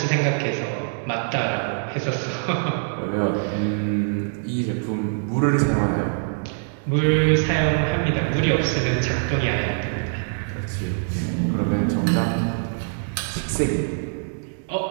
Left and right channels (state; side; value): silent; left; digital silence